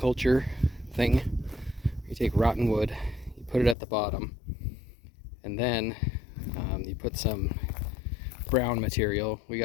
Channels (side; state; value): right; drops out; at 3.8 s